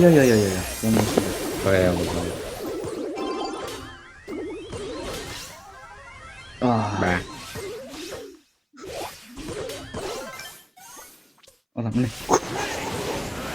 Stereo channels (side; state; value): both; identical; correlation 1.00